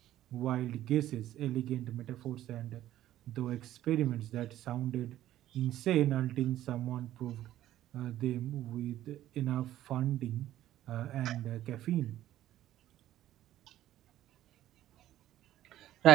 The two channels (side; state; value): left; quieter; 13.3 dB